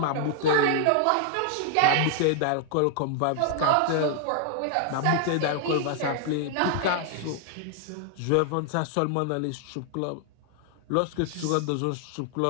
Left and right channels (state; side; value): different; both; correlation 0.00